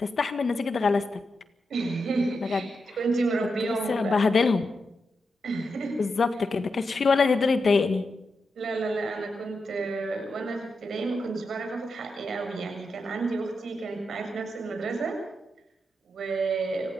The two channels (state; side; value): normal; both; correlation 0.87